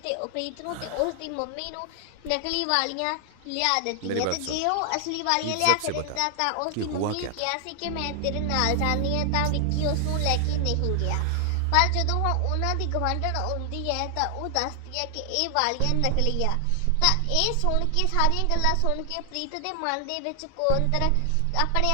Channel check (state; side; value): different; both; correlation 0.00